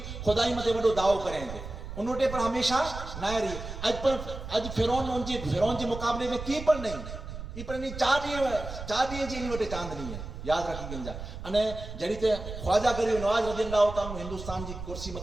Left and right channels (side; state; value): right; noise; rumble, 9 dB below the sound